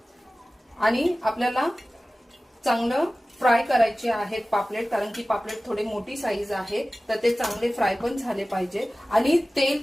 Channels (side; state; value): both; normal; correlation 0.97